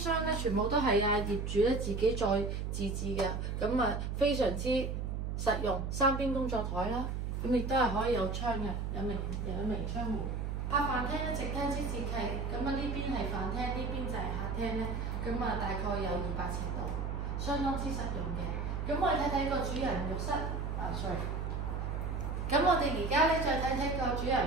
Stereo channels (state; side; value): noise; right; hum, 2 dB below the sound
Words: 咧全部都係業主咧自己再自製嘅，咁啊非常之實用。3邊工作台啦，咁亦都係可以有窗嘅，有明窗戶。客飯廳咧直廳式設計，咁啊呢邊係飯廳，呢邊就係客廳咧，咁啊大概有200尺度，相當之實用嘅。咁我哋睇睇個主人浴室，sorry。咁我哋而家咧再睇睇個主